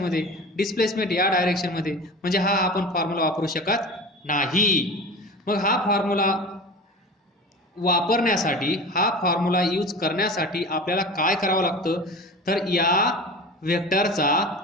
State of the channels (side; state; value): both; normal; correlation 0.34